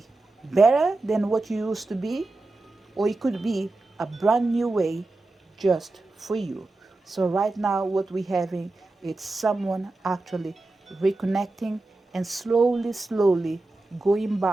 better than what you used to be, or it could be a brand new way just for you. So right now what we're having is someone actually reconnecting and slowly going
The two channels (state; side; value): quieter; left; 3.1 dB